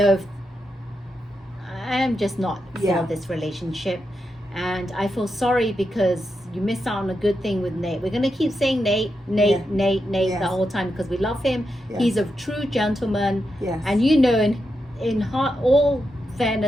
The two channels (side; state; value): both; normal; correlation 0.86